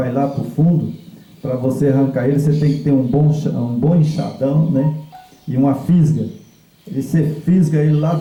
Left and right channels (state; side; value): identical; both; correlation 1.00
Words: lá para o fundo, para você arrancar ele, você tem que ter um bom enxadão, né? E uma fisga. E você fisga ele lá